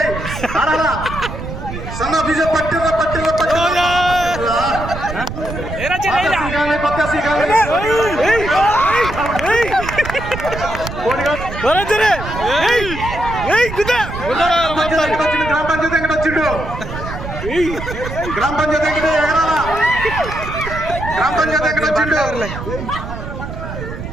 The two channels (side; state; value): right; noise; rumble, 8 dB below the sound